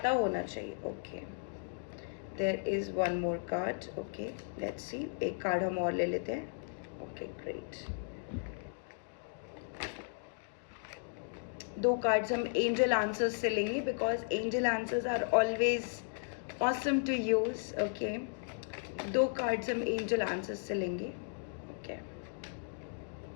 होना चाहिए। Okay, there is 1 more card. Okay, let's see, एक कार्ड हम और ले लेते हैं। Okay, great. 2 कार्ड्स हम एंजल आंसर्स से लेंगे because angel answers are always awesome to use. Okay, 2 cards हम एंजल आंसर्स से लेंगे. Okay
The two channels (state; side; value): silent; right; digital silence